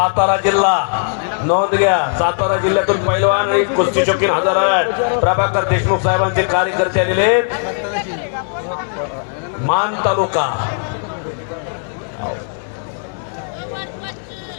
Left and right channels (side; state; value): right; silent; digital silence